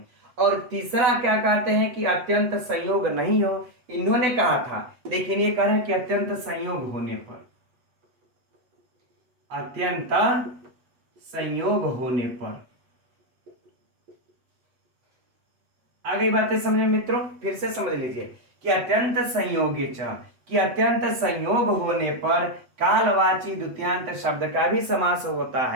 और तीसरा क्या कहते हैं कि अत्यंत संयोग नहीं हो, इन्होंने कहा था, लेकिन ये कह रहे हैं कि अत्यंत संयोग होने पर, अत्यंत संयोग होने पर। आगे बातें समझे मित्रों, फिर से समझ लीजिए कि अत्यंत संयोगे च, कि अत्यंत संयोग होने पर कालवाची द्वितीयांत शब्द का भी समास होता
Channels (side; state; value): left; late; 8.1 ms